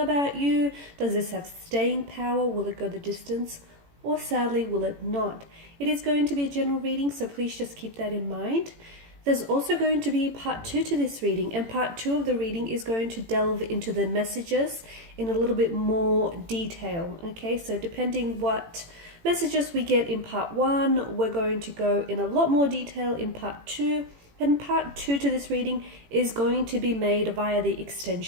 you, does this have staying power, will it go the distance, or sadly will it not? It is going to be a general reading, so please just keep that in mind. There's also going to be part 2 to this reading, and part 2 of the reading is going to delve into the messages in a little bit more detail, okay? So depending what messages we get in part 1, we're going to go in a lot more detail in part 2, and part 2 to this reading is going to be made via the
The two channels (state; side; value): late; left; 18 ms